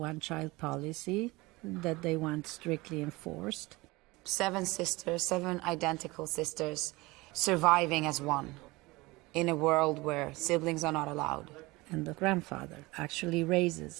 policy that they want strictly enforced. 7 sisters, 7 identical sisters, surviving as one in a world where siblings are not allowed. And the grandfather actually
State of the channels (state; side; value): quieter; left; 22.2 dB